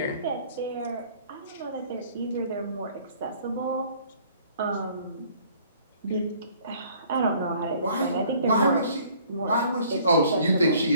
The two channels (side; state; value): both; inverted; correlation -0.56